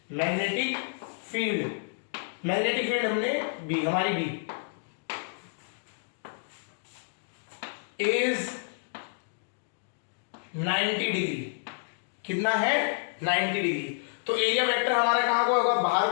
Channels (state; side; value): silent; right; digital silence